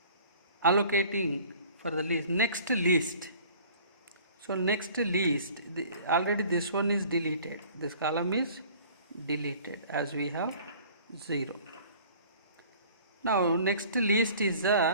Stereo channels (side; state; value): both; inverted; correlation -0.49